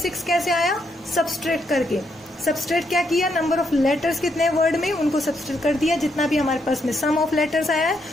कैसे आया, सब्सट्रैक्ट करके। सब्सट्रैक्ट क्या किया, नंबर ऑफ लेटर्स कितने वर्ड में, उनको सब्सट्रैक्ट कर दिया। जितना भी हमारे पास में सम ऑफ लेटर्स आया है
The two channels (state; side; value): normal; both; correlation 0.77